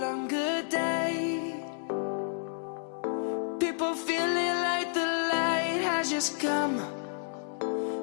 longer day. People feeling like the light has just come.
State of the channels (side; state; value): right; silent; digital silence